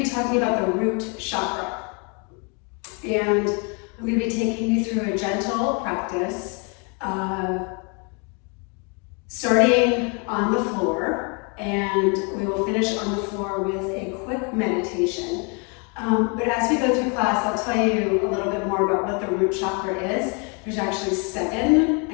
be talking about the root chakra. And I'm going to be taking you through a gentle practice, starting on the floor, and we will finish on the floor with a quick meditation. But as we go through class, I'll tell you a little bit more about what the root chakra is. There's actually 7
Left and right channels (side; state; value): right; quieter; 34.7 dB